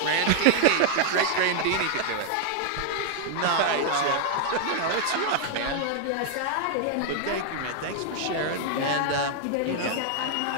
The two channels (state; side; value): different; both; correlation 0.00